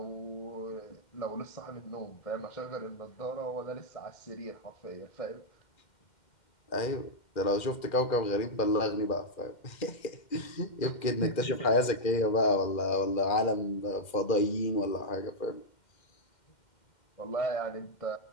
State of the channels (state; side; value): late; right; 2.4 ms